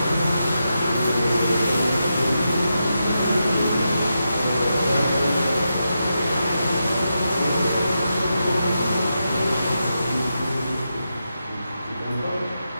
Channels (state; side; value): inverted; both; correlation -0.87